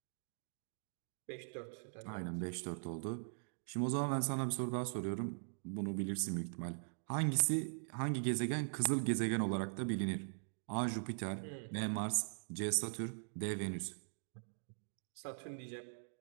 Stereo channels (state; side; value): silent; left; digital silence